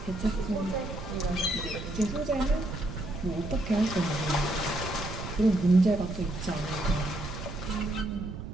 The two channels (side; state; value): right; noise; rumble, 9 dB below the sound